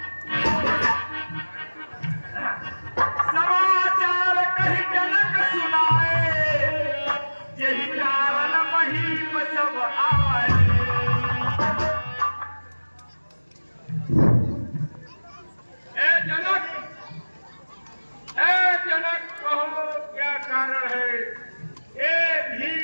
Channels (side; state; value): both; inverted; correlation -1.00